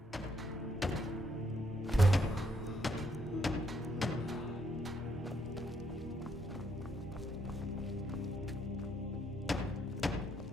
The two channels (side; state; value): both; normal; correlation 0.74